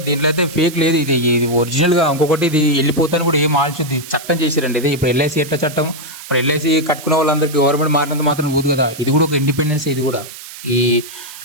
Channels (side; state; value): right; noise; hiss, 14 dB below the sound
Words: దీంట్లో అయితే ఫేక్ లేదు, ఇది ఒరిజినల్గా. ఇంకొకటి, ఇది వెళ్ళిపోతాను కూడా ఏం ఆలోచించి చట్టం చేశారండి. ఇది ఇప్పుడు ఎల్ఐసి ఎట్లా చట్టం, ఇప్పుడు ఎల్ఐసి కట్టుకున్న వాళ్ళందరికీ గవర్నమెంట్ మారినంత మాత్రం ఊదు కదా. ఇది కూడా ఒక ఇండిపెండెన్స్. ఇది కూడా ఈ